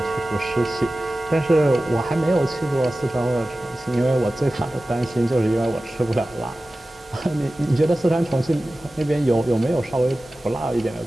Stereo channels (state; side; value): normal; both; correlation 0.96